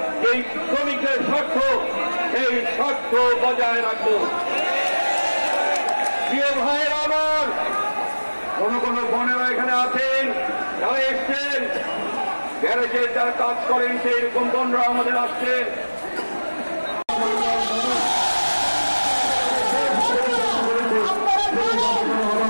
এই শ্রমিকদের স্বার্থ, এই স্বার্থ বজায় রাখব। প্রিয় ভাইয়েরা আমার, কোন কোন বোনেরা এখানে আছেন, যারা এসছেন গ্যারেজে যারা কাজ করেন, সেই রকম বোনরা আমাদের আসছেন।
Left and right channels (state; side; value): inverted; both; correlation -1.00